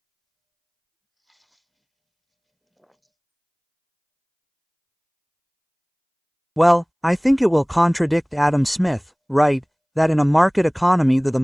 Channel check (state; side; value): identical; both; correlation 1.00